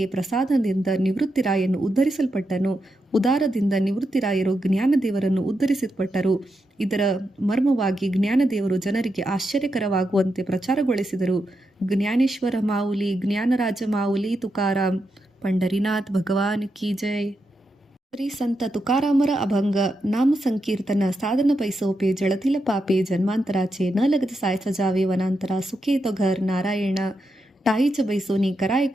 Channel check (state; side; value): normal; both; correlation 0.85